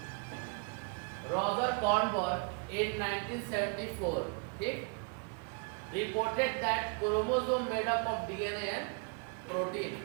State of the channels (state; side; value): quieter; left; 35.8 dB